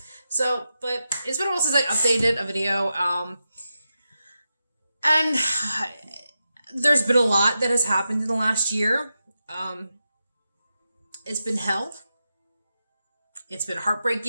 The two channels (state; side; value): inverted; both; correlation -0.89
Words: But it's been a while since I updated a video, and there's been a lot that has happened in the last year. It's been hell. It's been